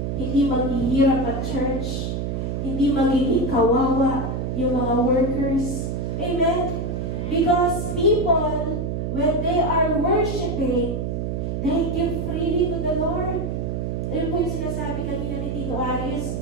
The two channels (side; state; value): right; noise; hum, 2 dB below the sound